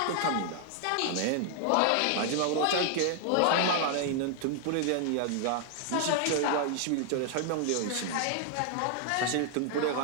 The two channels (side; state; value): both; different; correlation 0.00